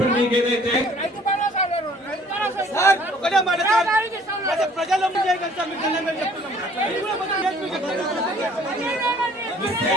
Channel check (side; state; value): both; normal; correlation 0.56